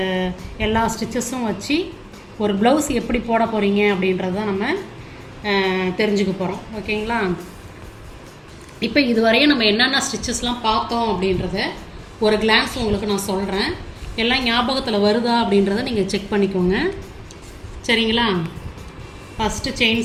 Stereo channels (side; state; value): both; identical; correlation 1.00